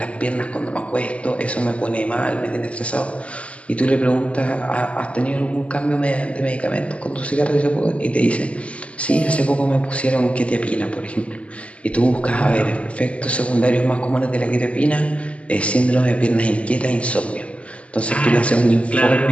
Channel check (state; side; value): late; right; 0.062 ms